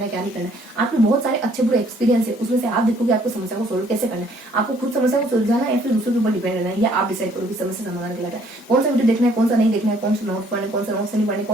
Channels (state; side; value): normal; both; correlation 0.62